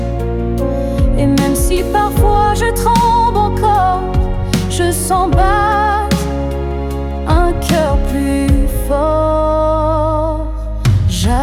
Et même si parfois je tremble encore, je sens battre un cœur plus fort.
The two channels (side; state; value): both; identical; correlation 1.00